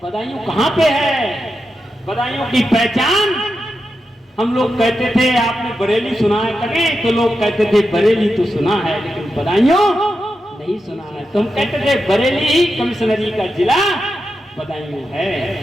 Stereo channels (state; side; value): normal; both; correlation 0.88